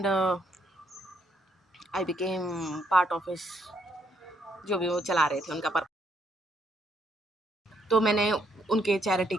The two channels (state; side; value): normal; both; correlation 0.73